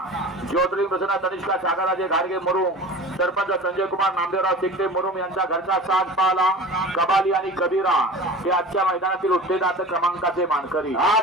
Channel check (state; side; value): normal; both; correlation 0.37